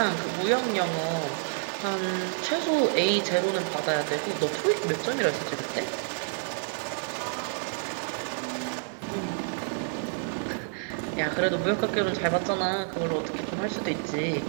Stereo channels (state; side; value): silent; left; 59 dB below the other